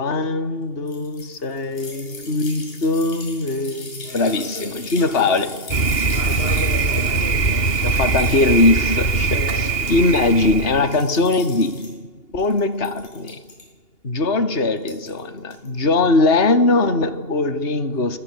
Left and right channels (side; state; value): right; late; 2.8 ms